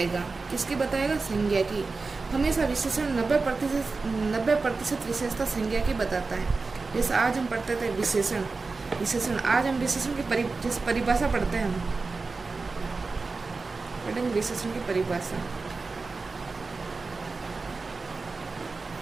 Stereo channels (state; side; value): quieter; left; 4.0 dB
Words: किसकी बताएगा? संज्ञा की। हमेशा विशेषण 90% विशेषता संज्ञा की बताता है। जैसे आज हम पढ़ते थे विशेषण आज हम विशेषण की जैसे परिभाषा पढ़ते हैं। हम पढ़ेंगे विशेषण की परिभाषा।